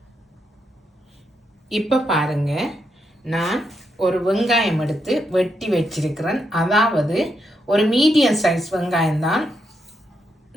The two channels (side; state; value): both; normal; correlation 0.81